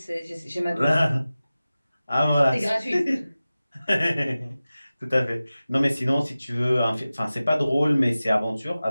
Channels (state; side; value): inverted; both; correlation -0.96